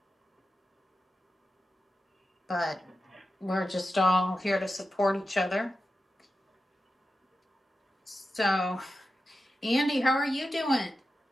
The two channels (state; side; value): normal; both; correlation 0.91